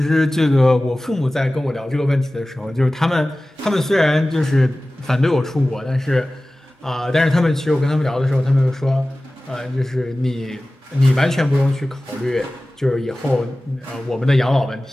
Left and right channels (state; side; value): normal; both; correlation 0.97